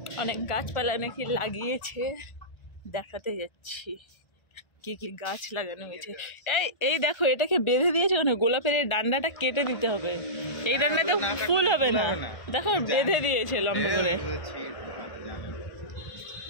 অনেক গাছপালা নাকি লাগিয়েছে, দেখাতে যাচ্ছি কি কি গাছ লাগানো হয়েছে। এই এই দেখো, এটাকে বেঁধে দিয়েছে কেন? গোলাপের এই ডান্ডাটা কেটে দিতে হবে, এই ডান্ডাতে ফুল হবে না। দেখো বেঁধে দিয়েছে লম্বা করে,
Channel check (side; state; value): right; late; 1.4 ms